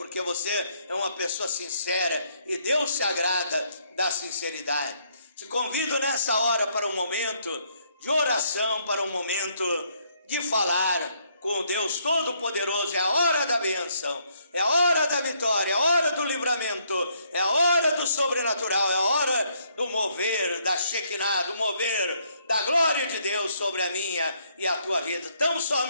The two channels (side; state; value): both; inverted; correlation -0.70